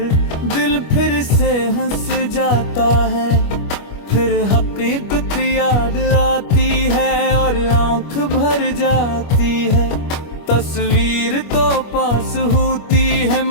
दिल फिर से हंस जाता है। फिर हकीकत याद आती है और आंख भर जाती है। तस्वीर तो पास होती है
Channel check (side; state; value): right; late; 25 ms